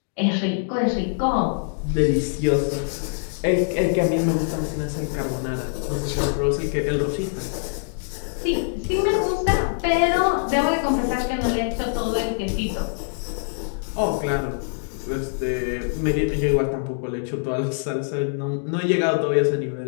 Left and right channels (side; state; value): right; silent; digital silence